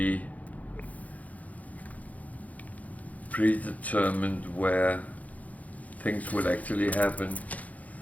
predetermined where things would actually happen.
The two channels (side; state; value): right; late; 0.074 ms